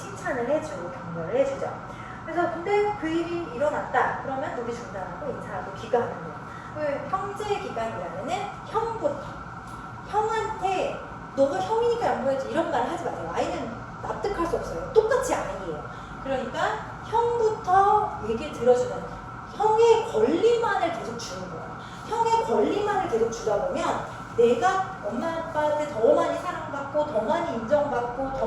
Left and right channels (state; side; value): identical; both; correlation 1.00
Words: 해주고 격려를 해주죠. 그래서 근데 그 일이 일어났다. 그러면 놀이 중단하고 인사하고 귀가하는 거예요. 형제 기간이라면은 형한테 너가 형이니까 양보해야지 이런 말 하지 마세요. 아이는 납득할 수 없어요. 똑같이 아이예요. 그러니까 형부터 얘기를 들어주는 형의 권리만을 계속 주는 거예요. 형의 권리만을 계속 주다 보면 내가 엄마 아빠한테 더 많이 사랑받고 더 많이 인정받고 더